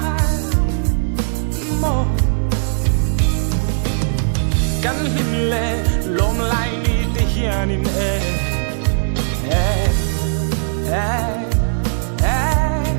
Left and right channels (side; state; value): left; silent; digital silence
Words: Mo Kan him le lom lai ni te hian in